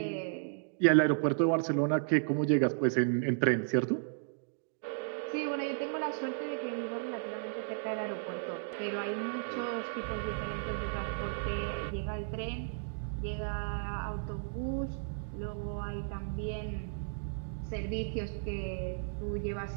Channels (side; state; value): left; silent; digital silence